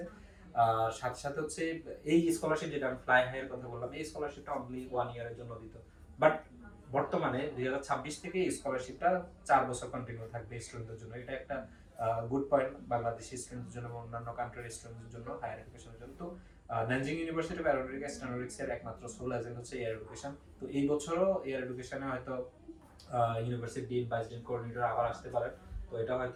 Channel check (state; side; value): identical; both; correlation 1.00